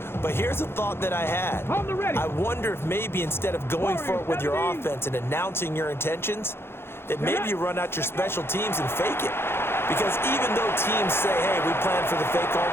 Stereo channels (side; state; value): right; late; 0.11 ms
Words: but here's a thought that I had. I wonder if maybe instead of going for it with your offense and announcing your intentions, that maybe you run out your special teams and fake it. Because even though teams say, hey, we plan for the fake all